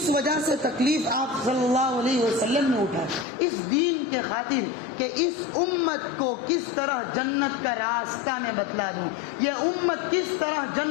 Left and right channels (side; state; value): right; drops out; at 3.2 s